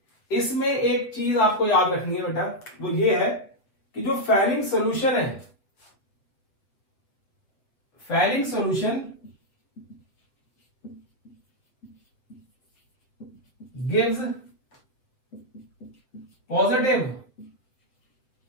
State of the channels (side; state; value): right; late; 7.7 ms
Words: इसमें एक चीज आपको याद रखनी है बेटा, वो ये है कि जो फैलिंग सॉल्यूशन है, Fehling solution gives positive